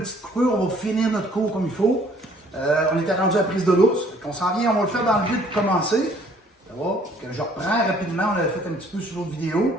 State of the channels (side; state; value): both; normal; correlation 0.59